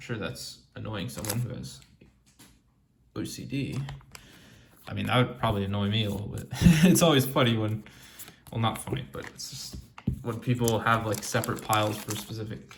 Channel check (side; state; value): both; identical; correlation 1.00